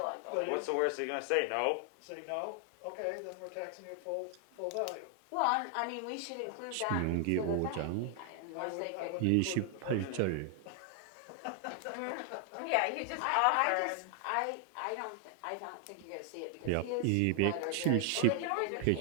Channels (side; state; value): both; different; correlation 0.00